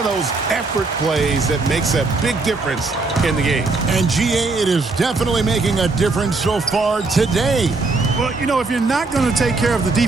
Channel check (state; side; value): quieter; left; 3.7 dB